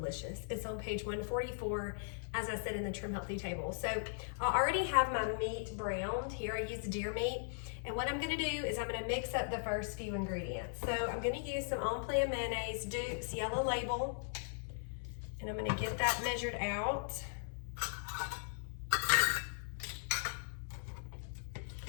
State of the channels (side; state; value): right; silent; 52 dB below the other